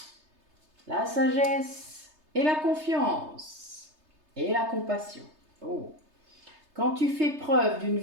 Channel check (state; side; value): late; left; 3.3 ms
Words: la sagesse et la confiance et la compassion. Oh. Quand tu fais preuve d'une